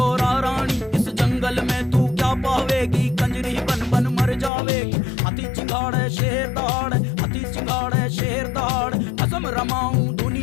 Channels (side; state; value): right; drops out; at 4.5 s